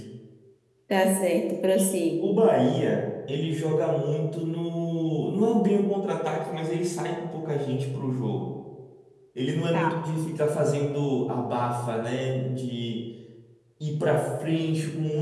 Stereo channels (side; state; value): both; identical; correlation 1.00